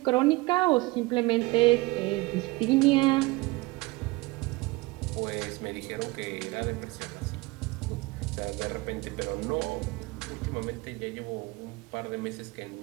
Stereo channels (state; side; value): quieter; left; 22.6 dB